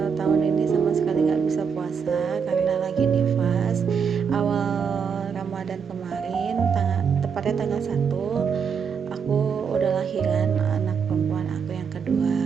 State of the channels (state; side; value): quieter; left; 6.5 dB